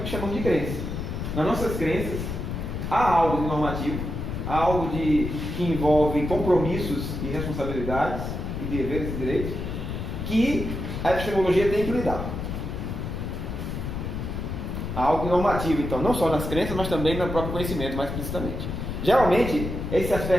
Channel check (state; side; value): noise; left; rumble, 5 dB below the sound